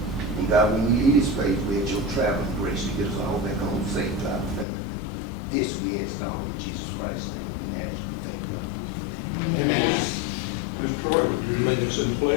And God, when we leave this place, we ask your traveling grace to get us all back home safe to our family. This we ask all in Jesus Christ's name. And that is we thank God. Amen. Mr. Troy, would you lead us in the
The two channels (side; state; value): right; drops out; at 4.7 s